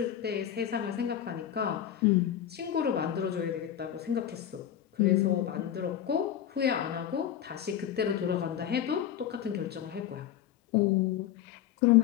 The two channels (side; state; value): right; quieter; 10.5 dB